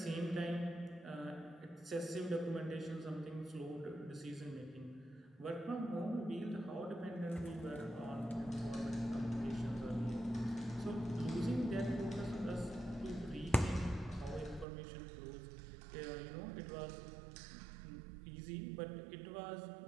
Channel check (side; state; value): left; drops out; at 14.7 s